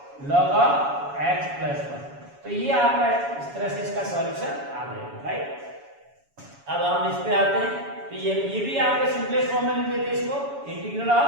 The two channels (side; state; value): left; late; 7.1 ms